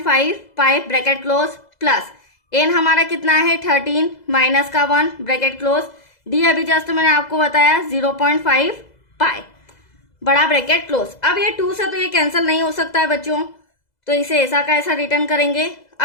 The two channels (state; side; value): late; right; 2.0 ms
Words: पाई ब्रैकेट क्लोज, प्लस एन हमारा कितना है 13 माइनस का 1 ब्रैकेट क्लोज, डी अभी जस्ट मैंने आपको बताया 0.5 पाई बड़ा ब्रैकेट क्लोज। अब ये 2 से तो ये कैंसिल नहीं हो सकता है बच्चों, तो इसे ऐसा का ऐसा रिटर्न करेंगे।